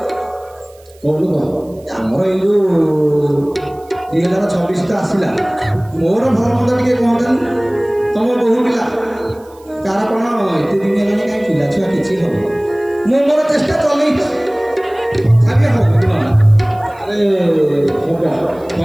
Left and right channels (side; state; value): right; noise; hiss, 29 dB below the sound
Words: କହୁନୁ ଆମର ଏଇ ଯୋଉ 2026 ତ ଆସିଲା ମୋର ଭଲ ମନ୍ଦ ଟିକେ କହନ୍ତାନି ତମ ବହୁ ପିଲା କାହାର କ'ଣ ଏତେ ଦିନ ହେଲାଣି କାହିଁ ପିଲା ଛୁଆ କିଛି ହବ ମୁଁ ମୋର ଚେଷ୍ଟା ଚଲେଇଛି ତଥାପି ହବ ଆରେ ହବ